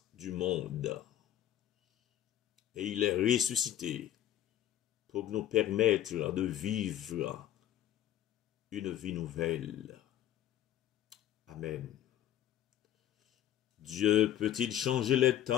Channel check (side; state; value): right; quieter; 11.8 dB